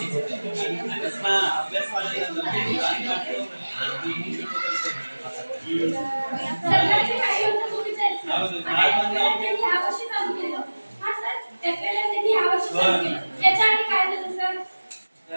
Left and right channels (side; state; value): both; inverted; correlation -1.00